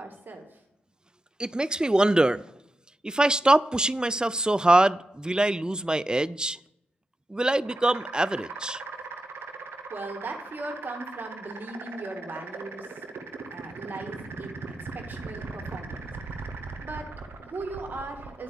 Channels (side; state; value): both; normal; correlation 0.89